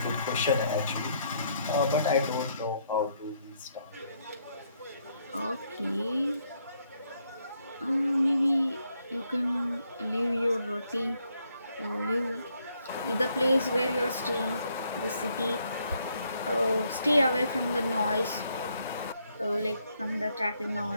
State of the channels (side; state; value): both; inverted; correlation -0.73